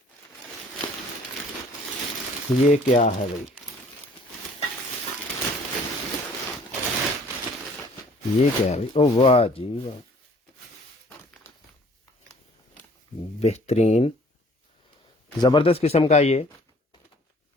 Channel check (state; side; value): normal; both; correlation 0.56